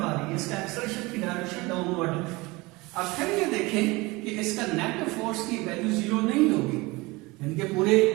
आ रही है, इसका एक्सेलरेशन की डायरेक्शन डाउनवर्ड है। अब फिर ये देखें कि इसका नेट फोर्स की वैल्यू 0 नहीं होगी, यानी कि पूरे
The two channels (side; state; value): left; quieter; 23.2 dB